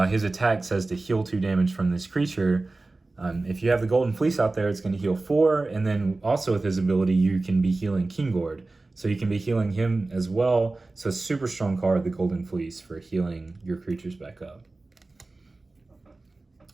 his attack says to heal 2 damage from this creature. If you have the Golden Fleece out there, it's going to heal 4, and then also with his ability, you can be healing Gord. So you can be healing him as well. So super strong card, the Golden Fleece, for healing your creatures back up.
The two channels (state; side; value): quieter; left; 3.3 dB